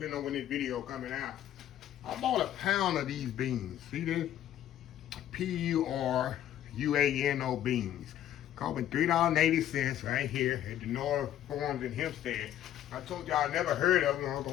on when this video coming out. I bought a pound of these beans. See this? PERUANO beans. Costing $3.80 right here at the North Farms in Hempstead. I told y'all I never heard of them. I'm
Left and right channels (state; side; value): quieter; right; 11.8 dB